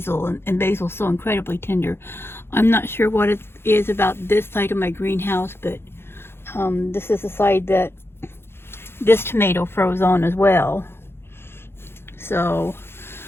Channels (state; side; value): late; right; 0.11 ms